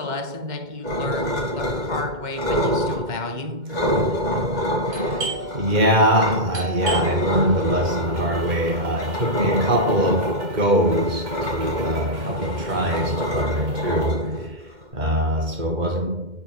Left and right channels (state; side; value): late; left; 2.1 ms